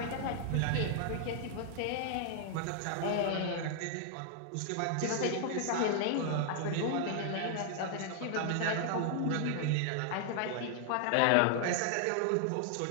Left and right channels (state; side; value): different; both; correlation 0.00